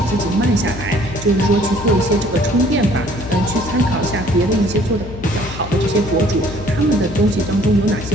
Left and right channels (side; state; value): left; noise; hum, 12 dB below the sound